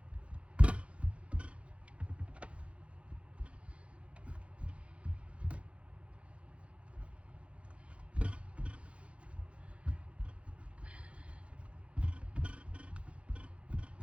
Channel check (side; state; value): left; late; 0.061 ms